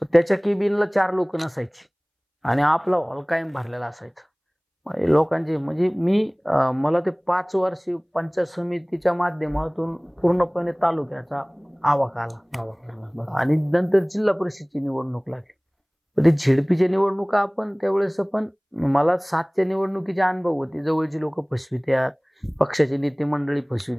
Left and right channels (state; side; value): identical; both; correlation 1.00